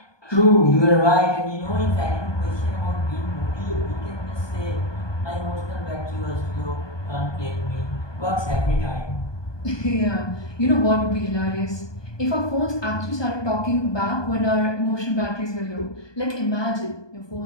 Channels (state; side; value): late; right; 1.2 ms